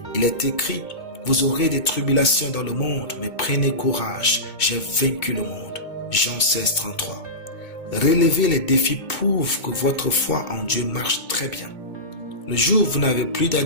Il est écrit, vous aurez des tribulations dans le monde, mais prenez courage, j'ai vaincu le monde. Jean 16, 33. Relever les défis prouve que votre foi en Dieu marche très bien. Le jour où vous n'avez plus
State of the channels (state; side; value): late; right; 2.2 ms